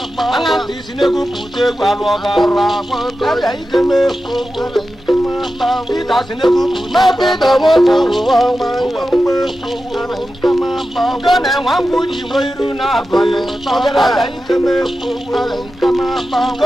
anga disinegu pute gwalu ogara abia ikeme kowo pita sinegu pute ma pita moto wo ma gana wangu di moiru na bo abia ikeme kowo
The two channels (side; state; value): both; normal; correlation 0.92